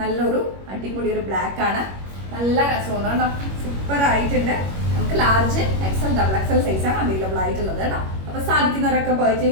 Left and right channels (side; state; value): left; late; 21 ms